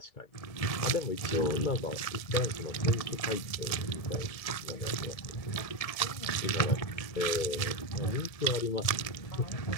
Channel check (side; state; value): right; late; 1.8 ms